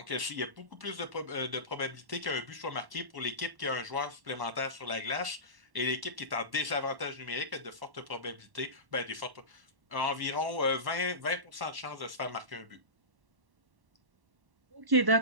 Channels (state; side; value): late; left; 1.1 ms